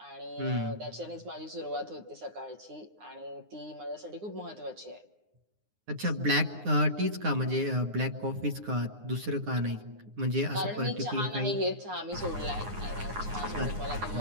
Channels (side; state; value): left; late; 9.7 ms